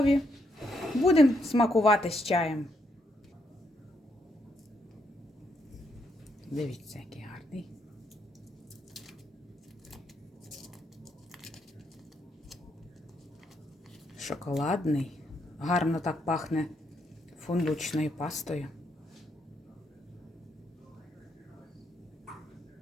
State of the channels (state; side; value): normal; both; correlation 0.76